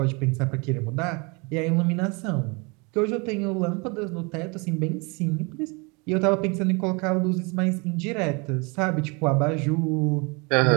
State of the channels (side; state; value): left; quieter; 29.7 dB